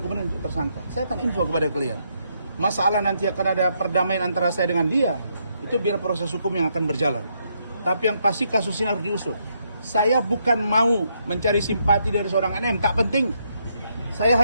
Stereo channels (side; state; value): both; inverted; correlation -0.76